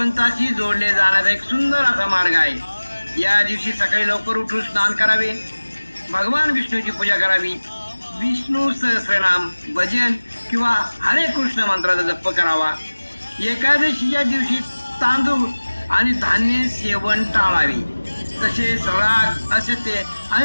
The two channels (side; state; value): both; inverted; correlation -1.00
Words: जोडले जाण्याचा एक सुंदर असा मार्ग आहे. या दिवशी सकाळी लवकर उठून स्नान करावे, भगवान विष्णूची पूजा करावी, विष्णू सहस्रनाम, भजन किंवा हरे कृष्ण मंत्राचा जप करावा. एकादशीच्या दिवशी तांदूळ आणि धान्य सेवन टाळावे. तसेच राग, असत्य